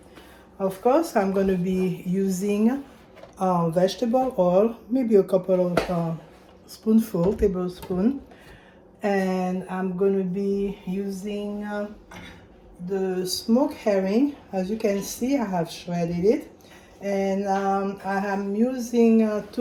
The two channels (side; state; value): both; identical; correlation 1.00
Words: Of course, I'm going to be using vegetable oil, maybe a couple of tablespoon, and I'm going to be using the smoked herring. As you can see, I have shredded it, and I am using